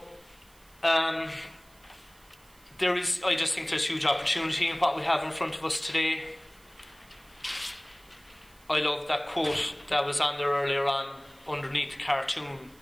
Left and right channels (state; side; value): noise; right; hiss, 28 dB below the sound